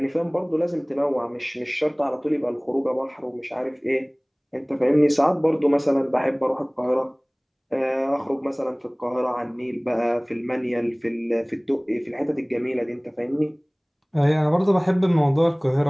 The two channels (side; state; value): both; identical; correlation 1.00